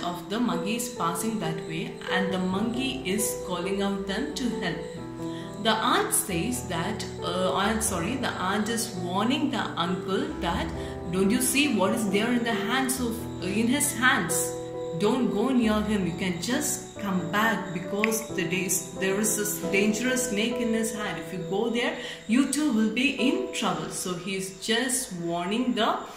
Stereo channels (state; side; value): identical; both; correlation 1.00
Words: of the monkey is passing that way, and the monkey is calling out them to help him. The aunt says that, the aunt is warning the uncle that, don't you see what is there in his hands? Don't go near him. You can just come back because there is this dangerous snake in his hand. If you go there, you too will be in trouble. So he's just warning the